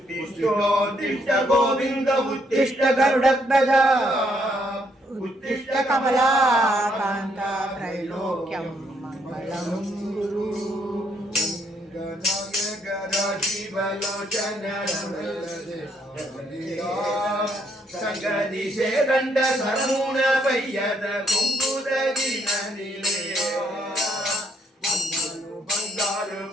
गोविन्द उत्तिष्ठ गरुडध्वजा उत्तिष्ठ कमलाकान्ता त्रैलोक्यं मङ्गलं गुरु गणायक राशिवलोचन संगदिशे दण्ड सरमून पय्यद कुङ्कुदगिन निलयो बंगारु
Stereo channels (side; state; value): both; normal; correlation 0.72